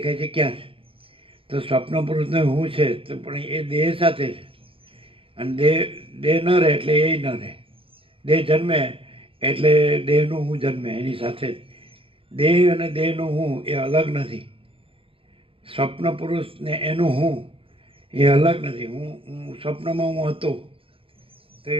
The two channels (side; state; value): left; late; 0.26 ms